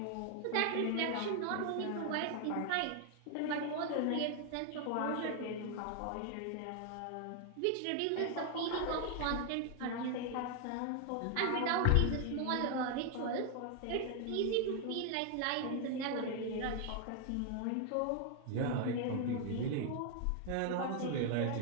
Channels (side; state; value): both; different; correlation 0.00